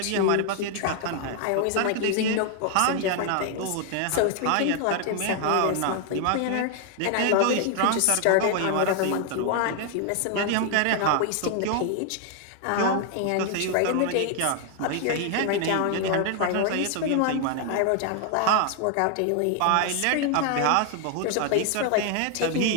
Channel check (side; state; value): both; different; correlation 0.00